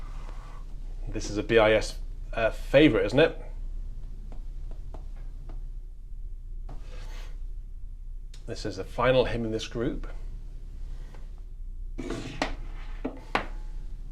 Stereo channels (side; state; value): both; identical; correlation 1.00